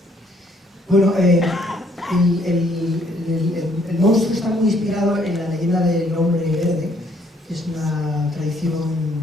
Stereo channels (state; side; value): normal; both; correlation 0.66